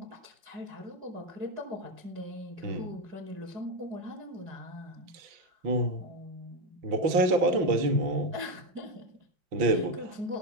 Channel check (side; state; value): left; late; 5.9 ms